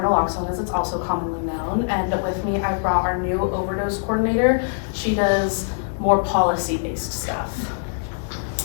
as it's also commonly known, and with me I've brought our new overdose coordinator. She does more policy-based stuff.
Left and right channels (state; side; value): silent; right; 57 dB below the other